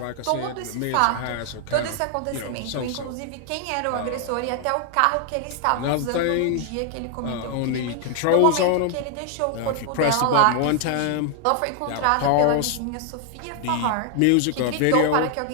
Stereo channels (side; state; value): both; different; correlation 0.00